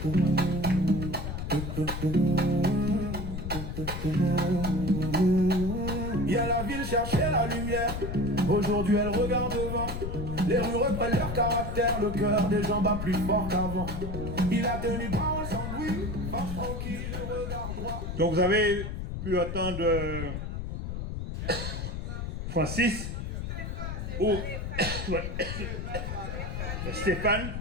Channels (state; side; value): noise; left; rumble, 5 dB below the sound